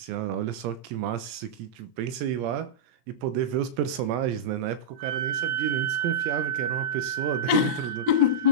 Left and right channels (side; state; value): left; late; 17 ms